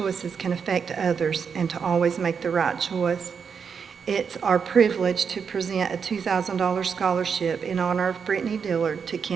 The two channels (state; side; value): quieter; left; 6.4 dB